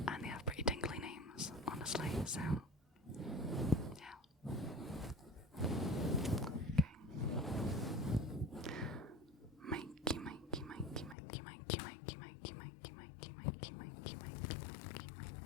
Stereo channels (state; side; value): drops out; right; at 11.2 s